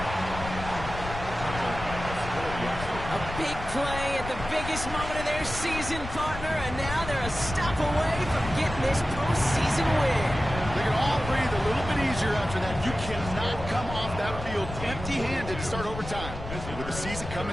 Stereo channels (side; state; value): left; noise; rumble, 9 dB below the sound